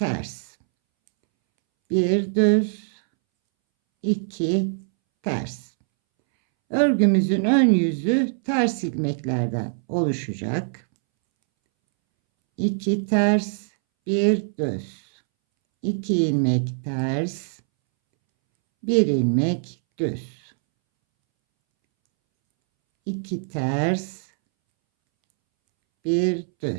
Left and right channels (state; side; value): silent; left; 63 dB below the other